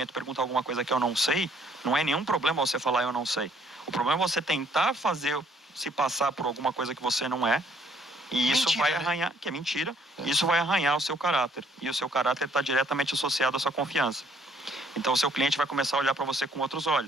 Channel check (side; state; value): both; normal; correlation 0.64